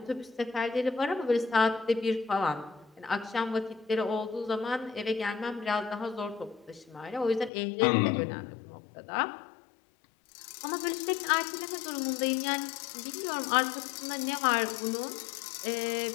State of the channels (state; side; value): drops out; right; at 7.5 s